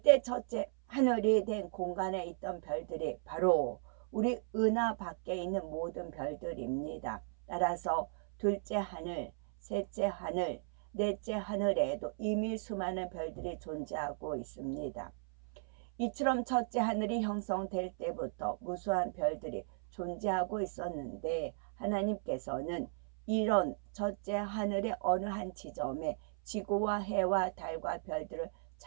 첫째 하늘이 된 공간에 있던 별들이 바로 우리 은하 밖에 있는 모든 별들입니다. 따라서 둘째 하늘, 셋째 하늘, 넷째 하늘에도 이미 수많은 별들이 존재하고 있습니다. 이처럼 첫째 하늘이 형성될 때부터 무수한 별들이 존재하고 있었는데 하나님께서는 이런 첫째 하늘의 어느 한 지점에 지구와 해와 달과 별들을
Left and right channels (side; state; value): left; silent; 54 dB below the other